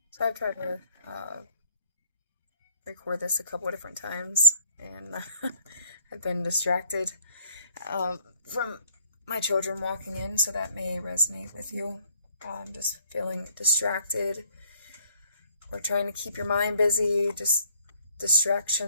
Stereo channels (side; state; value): both; inverted; correlation -0.63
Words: So I've tried to record this a couple of different times, and I've been distracted from my children walking in, so that may resonate with you. Just feeling distracted or trying to keep your mind busy, just